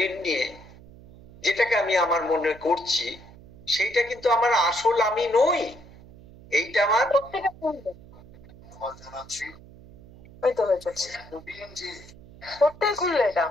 নিয়ে যেটাকে আমি আমার মনে করছি, সেইটা কিন্তু আমার আসল আমি নই। এইটা আমার খুললে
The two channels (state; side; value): noise; right; hum, 21 dB below the sound